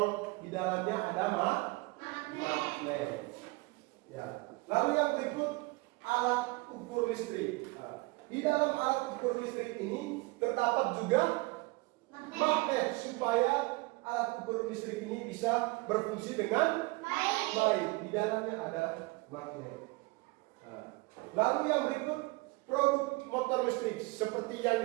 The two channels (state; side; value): quieter; left; 24.6 dB